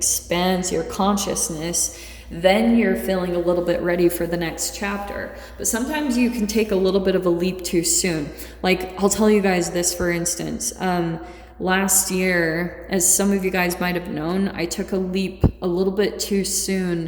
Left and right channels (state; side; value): identical; both; correlation 1.00